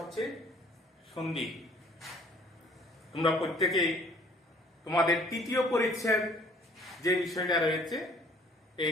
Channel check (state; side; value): normal; both; correlation 0.57